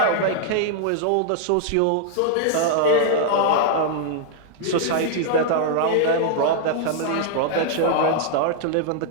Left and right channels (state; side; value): different; both; correlation -0.01